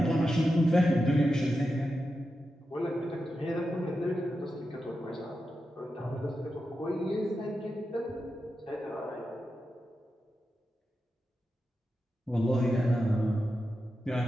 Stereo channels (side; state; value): both; normal; correlation 0.89